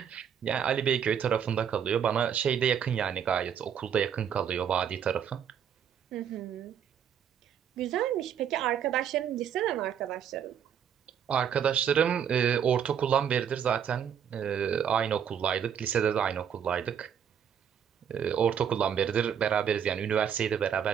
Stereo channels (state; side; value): quieter; left; 8.3 dB